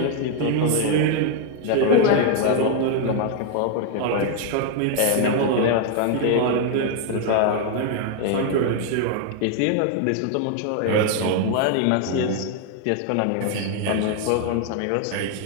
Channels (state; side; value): different; both; correlation 0.01